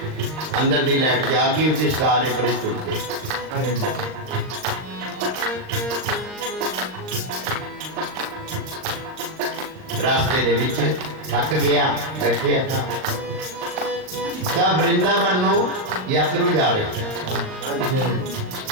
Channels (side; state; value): left; late; 39 ms